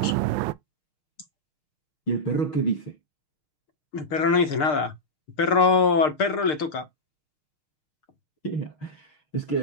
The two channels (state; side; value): late; right; 6.6 ms